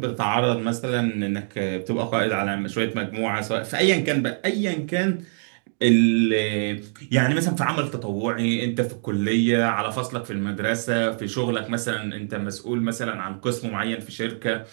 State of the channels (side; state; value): left; silent; 62 dB below the other